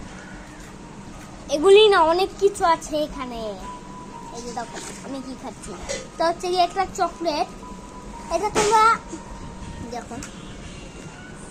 এগুলি না অনেক কিছু আছে এখানে। এই যে দেখো আমি কি খাচ্ছি, তো হচ্ছে কি একটা চকলেট। এটা তোমরা দেখো,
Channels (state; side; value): identical; both; correlation 1.00